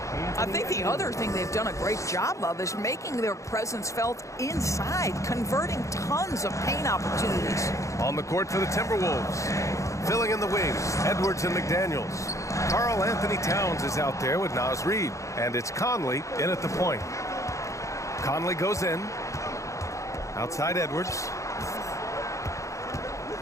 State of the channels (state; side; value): late; right; 0.15 ms